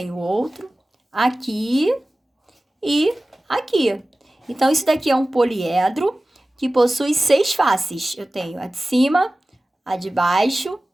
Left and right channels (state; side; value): normal; both; correlation 0.97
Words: outro, aqui e aqui. Então, isso daqui é um poliedro que possui 6 faces. Eu tenho a de cima, a de baixo,